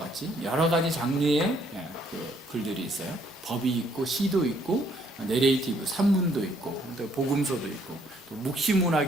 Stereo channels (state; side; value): normal; both; correlation 0.67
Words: 여러 가지 장르의 글들이 있어요. 법이 있고 시도 있고 내레이티브, 산문도 있고 또 복음서도 있고 또